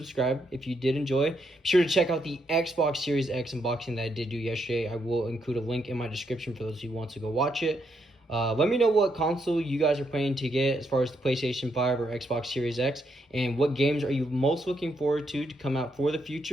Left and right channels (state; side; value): normal; both; correlation 0.78